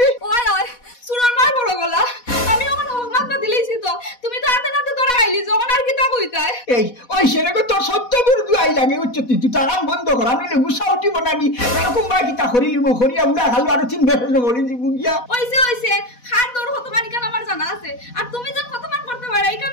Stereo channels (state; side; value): late; right; 4.1 ms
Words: ওই সুরন মার বড় গলা আমি ওখান হকমাত না দিলেইছি তো তুমি তো হাতে নাতে ধরা আইলি যখন আর কিতা কইতাই এই ওই সেনেকে তোর সত্য বিরুদ্ধে আই লাগে উচ্চ তুই তার বন্ধ কর আমি গুসা উঠি বানানি এরকম বা কিতা করিলি মো করিয়া উড়া খালো আর তিন বেশ করি দিব গিয়া ওইছে খান তোর হতমান কেন আমার জানা আছে আর তুমি যেন হতমান করতে পারো এই